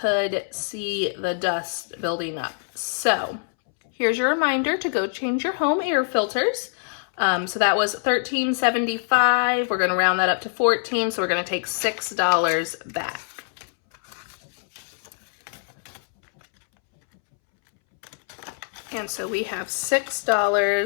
see the dust building up. So here's your reminder to go change your home air filters. So that was $13.75. We're gonna round that up to $14, so we're gonna take $6 back. And so we have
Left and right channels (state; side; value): silent; right; 62 dB below the other